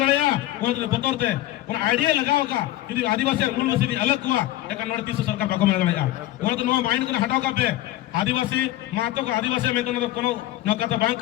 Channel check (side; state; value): right; quieter; 15.1 dB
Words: लड़या वो तो बोतरते उन आइडिया लगाओ का कि आदिवासी और मूलवासी अलग हुआ एकन नोडे 300 सरकार बाको में लड़या वो तो नो माइंड को हटाओ का पे आदिवासी मातो का आदिवासी में तो न कोनो न का